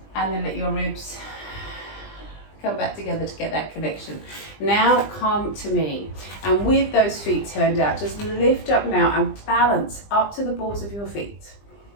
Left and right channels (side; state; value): right; late; 20 ms